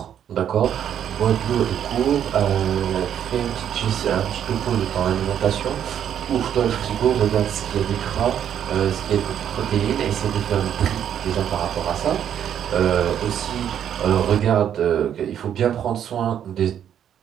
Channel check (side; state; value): left; quieter; 9.5 dB